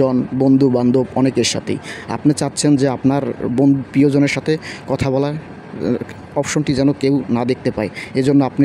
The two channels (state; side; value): identical; both; correlation 1.00